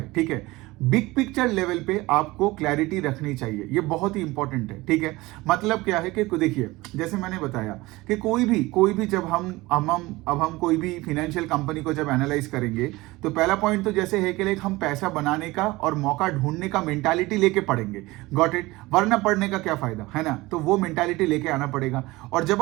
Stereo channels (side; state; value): left; quieter; 20.6 dB